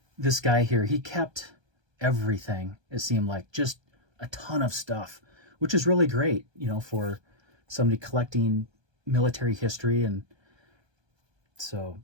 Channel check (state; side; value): late; left; 1.3 ms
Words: guy here. He kept everything, it seemed like, just a ton of stuff, which is really great, you know, for somebody collecting military history. And so